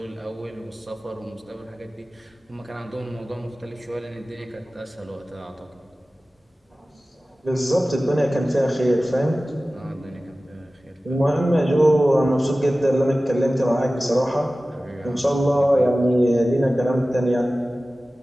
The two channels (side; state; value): both; normal; correlation 0.96